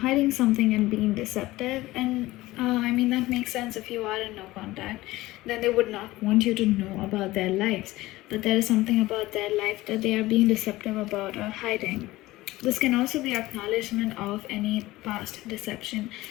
something and being deceptive, and I mean that makes sense. If you are in no contact, then they would not want you to know about their lives, but there is something about their life that they are being deceptive about or hiding. This can also be acknowledgement of any past deception.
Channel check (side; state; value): right; quieter; 18.2 dB